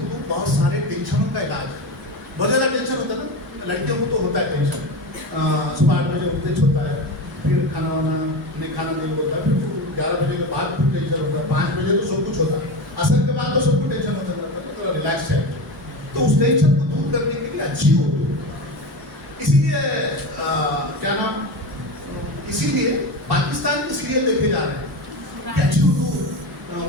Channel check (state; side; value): normal; both; correlation 0.23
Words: بہت سارے ٹینشنوں کا علاج ہے. بہت زیادہ ٹینشن ہوتا ہے نا، لڑکیوں کو تو ہوتا ہے ٹینشن. صبح 8 بجے اٹھتے چھوٹا ہے، پھر کھانا وانا نہیں کھانا نہیں ہوتا ہے، پھر 11 بجے کے بعد پھر ٹینشن ہوتا ہے، 5 بجے تو سب کچھ ہوتا ہے، عصر کے بعد تو سب کو ٹینشن ہوتا ہے، تھوڑا ریلیکس ہے. تو اس ٹینشن کو دور کرنے کے لیے اچھی اردو. اسی لیے کیا نام، اسی لیے پاکستان کے سیریل دیکھے جا رہے ہیں کہ اچھی اردو